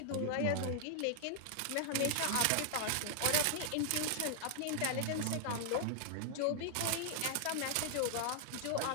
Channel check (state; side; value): different; both; correlation 0.00